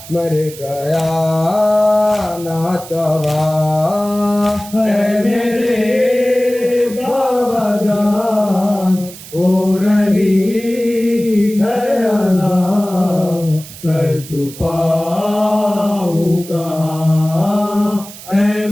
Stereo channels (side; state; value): right; noise; hiss, 16 dB below the sound